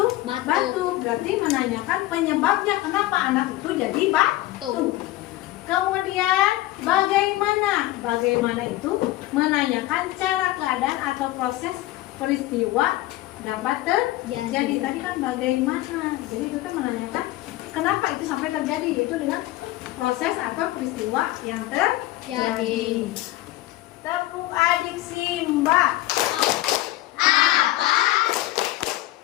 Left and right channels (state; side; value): quieter; right; 16.7 dB